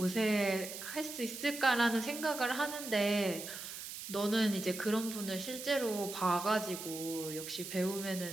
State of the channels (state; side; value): noise; right; hiss, 9 dB below the sound